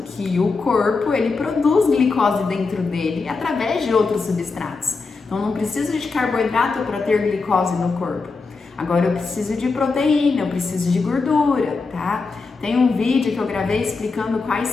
o corpo, ele produz glicose dentro dele através de outros substratos. Então, não preciso de carboidrato para ter glicose no corpo. Agora, eu preciso de proteína, eu preciso de gordura, tá? Tem um vídeo que eu gravei explicando quais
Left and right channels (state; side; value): quieter; right; 4.2 dB